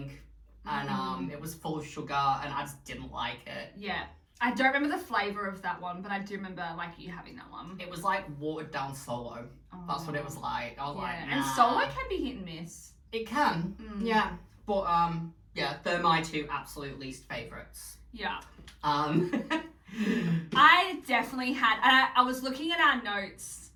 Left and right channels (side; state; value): both; identical; correlation 1.00